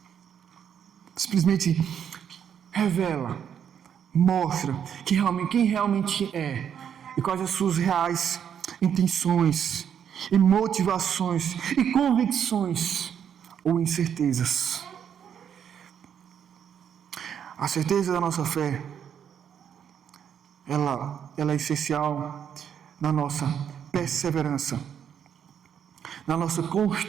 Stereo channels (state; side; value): quieter; left; 8.5 dB